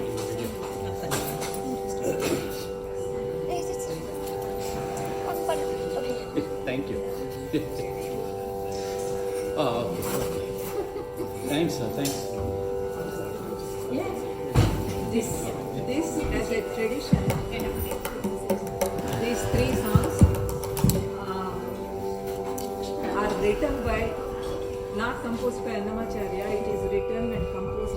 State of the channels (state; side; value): identical; both; correlation 1.00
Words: the video. Thank you. Oh, okay. Thanks, sir. Thanks. This as a tradition, these 3 songs are written by, not composed by Annamacharya, it is written and